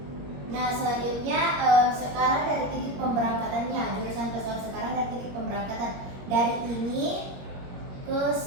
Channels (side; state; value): left; late; 21 ms